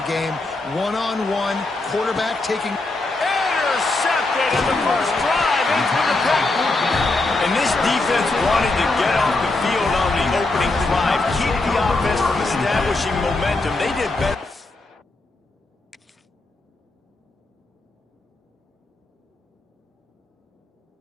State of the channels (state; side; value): quieter; right; 3.1 dB